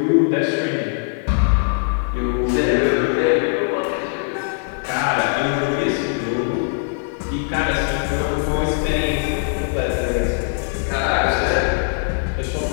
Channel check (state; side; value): silent; right; digital silence